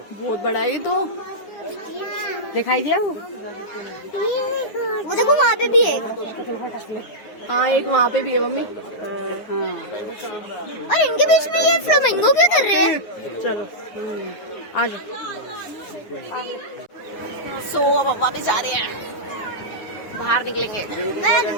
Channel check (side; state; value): right; late; 9.7 ms